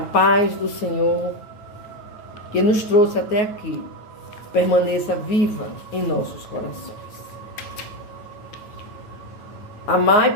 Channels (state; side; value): late; right; 9.1 ms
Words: do Senhor, que nos trouxe até aqui, permaneça viva em nossos corações.